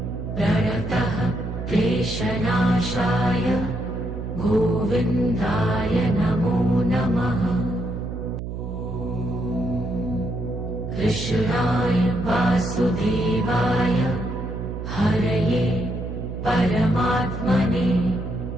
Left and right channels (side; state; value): right; noise; hum, 6 dB below the sound